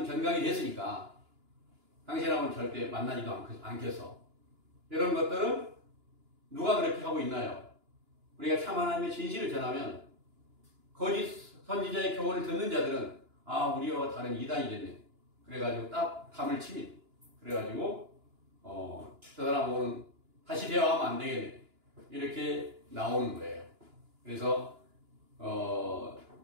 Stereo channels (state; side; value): late; left; 2.9 ms